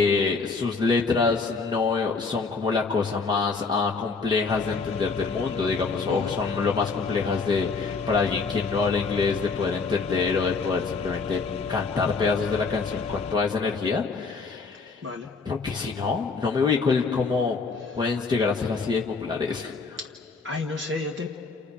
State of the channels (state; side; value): quieter; right; 4.5 dB